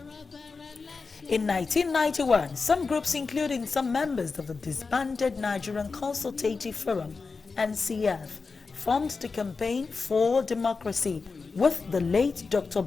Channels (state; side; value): quieter; right; 4.5 dB